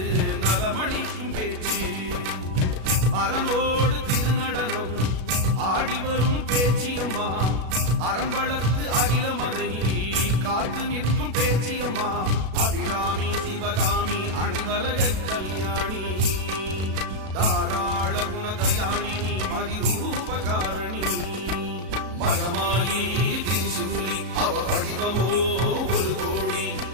நலமளிக்கும் பேச்சு. அரணோடு திருநடனம் ஆடி வரும் பேச்சியம்மா. அரண் வளர்த்து அகிலமதை காத்து நிற்கும் பேச்சியம்மா. அபிராமி சிவகாமி அனைவரக கல்யாணி. தாராள குணதயாளினி மதிரூபகாரணி. மகமாயி திரிசூலி அவ வடிவமோ ஒரு கோடி.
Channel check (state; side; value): late; left; 37 ms